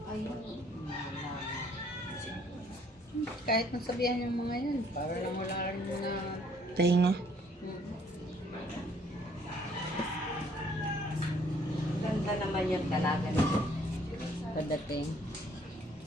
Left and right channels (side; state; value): both; normal; correlation 0.62